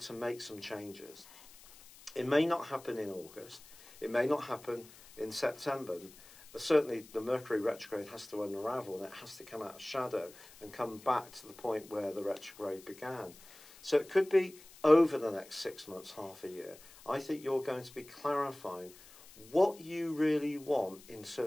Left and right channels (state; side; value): noise; left; hiss, 21 dB below the sound